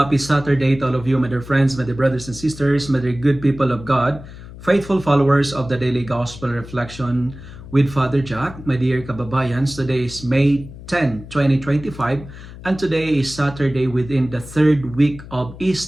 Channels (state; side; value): noise; left; hum, 15 dB below the sound